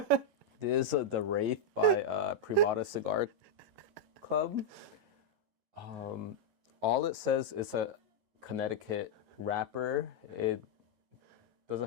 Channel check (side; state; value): left; late; 11 ms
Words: This is the Wraith by Privada Cigar Club. All it says is a Connecticut wrapper. It doesn't